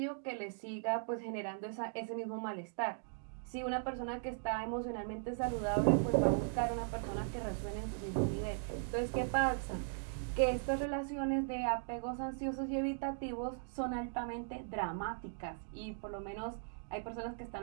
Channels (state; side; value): silent; left; digital silence